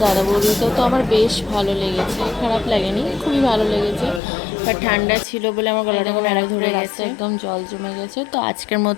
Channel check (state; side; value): drops out; right; at 4.2 s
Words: দাদা বৌদিতে, তো আমার বেশ ভালো লেগেছে, খারাপ লাগেনি, খুবই ভালো লেগেছে। বাট ঠান্ডা ছিল বলে আমার গলাটা এখন আরও ধরে গেছে, একদম জল জমে গেছে। তো আজকের